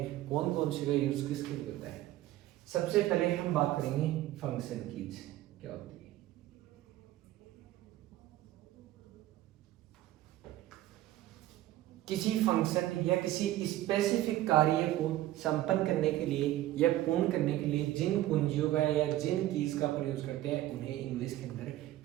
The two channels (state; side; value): quieter; left; 14.8 dB